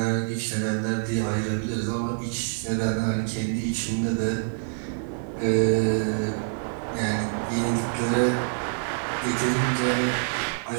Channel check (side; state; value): left; silent; digital silence